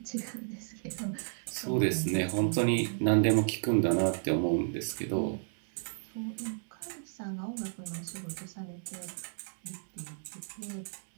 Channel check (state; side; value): silent; left; digital silence